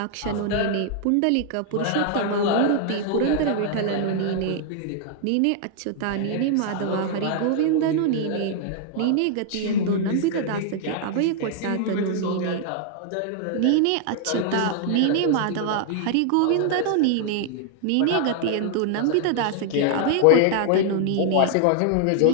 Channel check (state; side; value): different; both; correlation -0.01